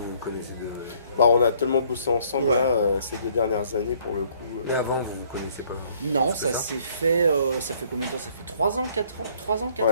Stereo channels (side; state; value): both; inverted; correlation -0.62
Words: on a tellement bossé ensemble ces 2 dernières années pour le coup. Et avant vous connaissez pas? Non, ça s'est fait, ça fait combien de temps? Ça fait 3 ans, 4 ans? 3 ans, 4